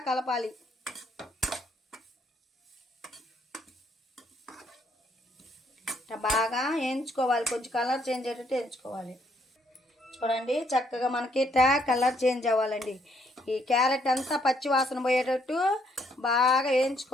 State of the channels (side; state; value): both; normal; correlation 0.70